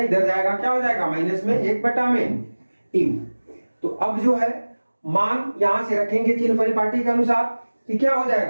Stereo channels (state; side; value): inverted; both; correlation -1.00